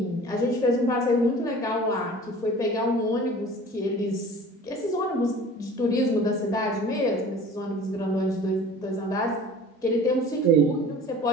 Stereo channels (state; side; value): normal; both; correlation 0.44